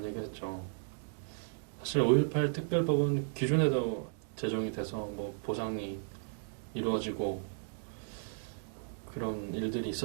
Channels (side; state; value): left; silent; digital silence